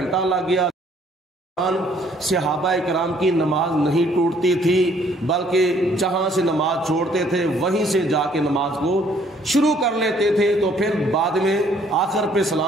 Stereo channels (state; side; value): normal; both; correlation 0.62